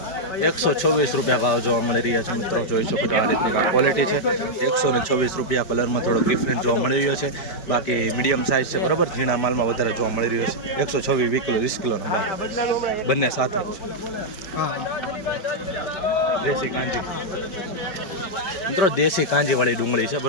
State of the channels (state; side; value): late; right; 5.0 ms